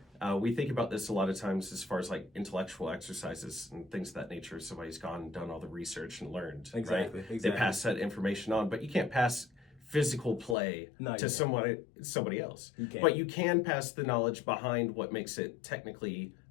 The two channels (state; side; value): drops out; right; at 10.6 s